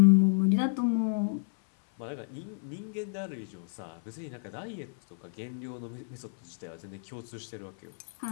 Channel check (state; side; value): silent; right; 57 dB below the other